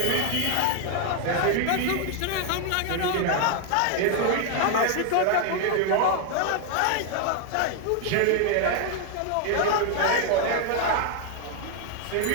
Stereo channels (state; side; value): different; both; correlation 0.00